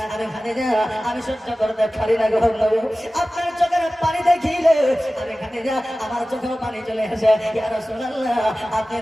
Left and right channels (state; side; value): normal; both; correlation 0.96